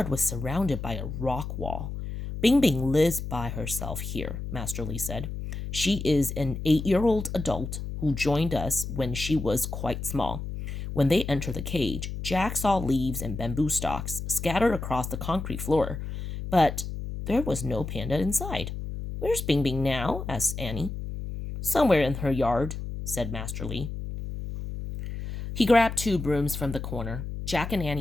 was surrounded by a rock wall. Bing Bing lives by herself here, Master Lee said. She is an 8-year-old adult who joined us when she was quite small. When they entered the cage, Jack saw leaves and bamboo stalks scattered across the concrete floor, but there was no panda inside. Where's Bing Bing now? Asked Annie. Somewhere in her yard, said Master Lee. He grabbed 2 brooms from the corner. Jack and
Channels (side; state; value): left; noise; hum, 6 dB below the sound